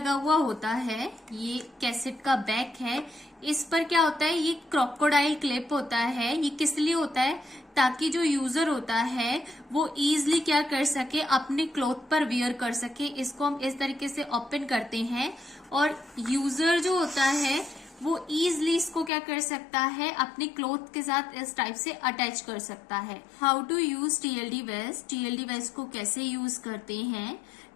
हुआ होता है। ये कैसेट का बैक है, इस पर क्या होता है? ये क्रोकोडाइल क्लिप होता है। ये किस लिए होता है? ताकि जो यूजर होता है वो इजीली क्या कर सके? अपने क्लॉथ पर वियर कर सके। इसको हम इस तरीके से ओपन करते हैं और यूजर जो होता है वो इजीली इसको क्या कर सकता है? अपने क्लॉथ के साथ इस टाइप से अटैच कर सकता है। How to use TLD vest. TLD vest को कैसे यूज करते हैं?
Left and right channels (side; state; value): right; drops out; at 19.1 s